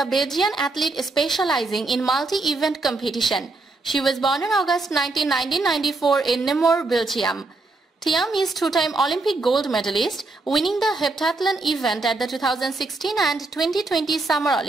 Belgian athlete specializing in multi-event competition. She was born in August 1994 in Namur, Belgium. Thiam is two-time Olympic gold medalist, winning the heptathlon event at the 2016 and 2020 Summer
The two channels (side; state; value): left; quieter; 3.3 dB